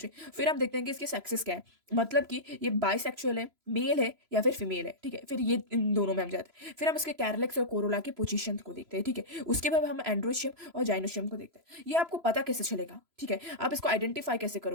फिर हम देखते हैं कि इसकी सेक्सेस क्या है, मतलब कि ये बाइसेक्सुअल है, मेल है या फिर फीमेल है। ठीक है, फिर ये इन दोनों में हम जाते हैं। फिर हम इसके कैरलेक्स और कोरोला की पोजीशन को देखते हैं। ठीक है, उसके बाद हम एंड्रोशियम और जाइनोशियम को देखते हैं। ये आपको पता कैसे चलेगा, ठीक है, आप इसको आइडेंटिफाई कैसे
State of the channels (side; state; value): left; late; 3.0 ms